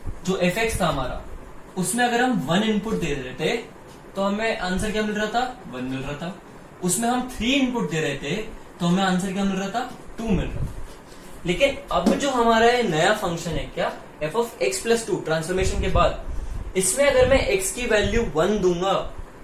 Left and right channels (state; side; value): identical; both; correlation 1.00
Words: जो एफ एक्स था हमारा, उसमें अगर हम 1 इनपुट दे रहे थे तो हमें आंसर क्या मिल रहा था, 1 मिल रहा था। उसमें हम 3 इनपुट दे रहे थे तो हमें आंसर क्या मिल रहा था, 2 मिल रहा था। लेकिन अब जो हमारा नया फंक्शन है क्या, F of x plus 2 transformation के बाद, इसमें अगर मैं x की वैल्यू 1 दूंगा